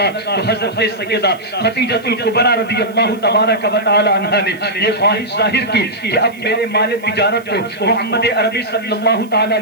تو حضرت سیدہ خدیجہ الکبریٰ رضی اللہ تبارک و تعالی عنہا نے یہ خواہش ظاہر کی کہ اب میرے مال تجارت کو محمد عربی صلی اللہ تعالی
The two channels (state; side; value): noise; right; hiss, 28 dB below the sound